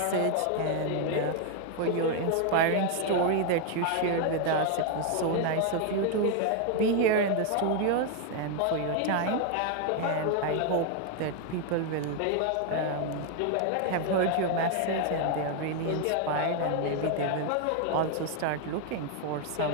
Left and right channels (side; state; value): both; different; correlation 0.01